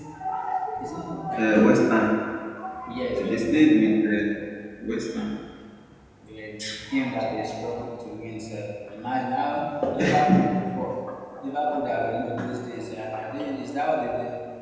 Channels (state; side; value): identical; both; correlation 1.00